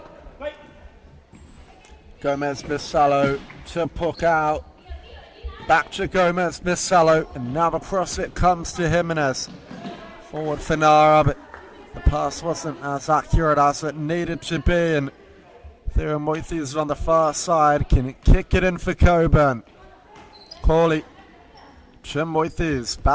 Gomez Bissalo to Puckow. Back to Gomez Bissalo, and now across it comes to Jimenez. Forward for Nara, but the pass wasn't as accurate as it needed to be, and Theo Moithes on the far side can kick it in for Cockburn. Corley to Moithes,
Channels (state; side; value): identical; both; correlation 1.00